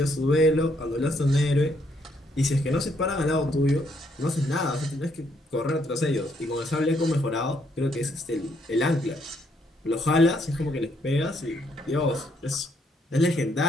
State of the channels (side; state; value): both; normal; correlation 0.72